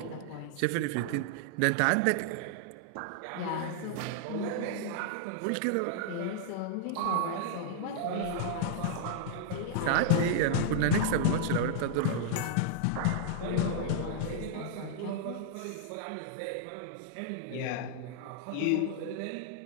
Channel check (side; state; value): both; different; correlation -0.01